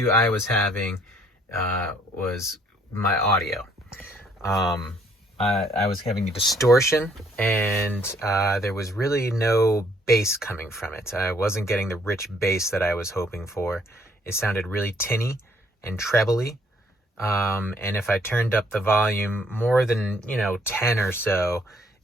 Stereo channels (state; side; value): normal; both; correlation 0.65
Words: I was having was my audio. I was having a distortion, and there was really no bass coming from it. I wasn't getting the rich bass that I was hoping for. It sounded really tinny and trebly. And if I turned up the volume more than 10 or so,